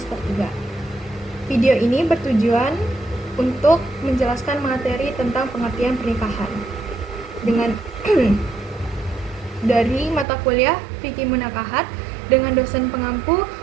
3. Video ini bertujuan untuk menjelaskan materi tentang pengertian pernikahan dengan dari mata kuliah Fikih Munakahat dengan dosen pengampu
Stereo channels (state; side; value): drops out; left; at 10.2 s